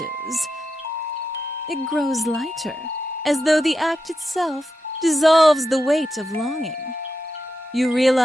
It grows lighter, as though the act itself dissolves the weight of longing. You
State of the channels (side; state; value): both; normal; correlation 0.88